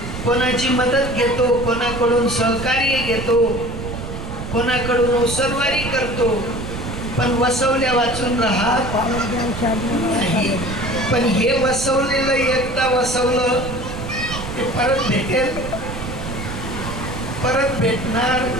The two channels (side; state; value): right; noise; rumble, 8 dB below the sound